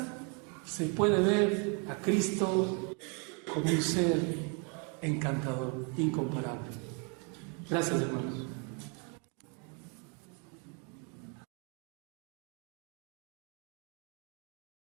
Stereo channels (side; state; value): left; quieter; 36.4 dB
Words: se puede ver a Cristo como un ser encantador, incomparable. Gracias, hermanos.